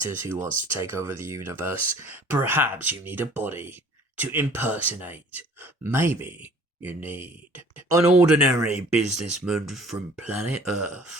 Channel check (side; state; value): both; normal; correlation 0.51